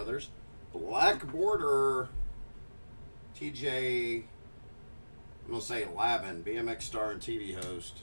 Black border... TJ, I'm going to say Lavin, BMX star and TV host.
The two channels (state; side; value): inverted; both; correlation -1.00